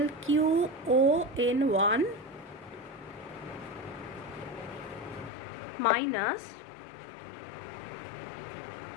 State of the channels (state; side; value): drops out; right; at 5.3 s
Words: Q o n one minus